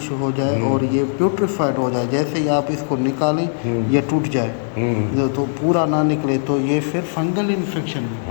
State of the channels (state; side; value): silent; right; digital silence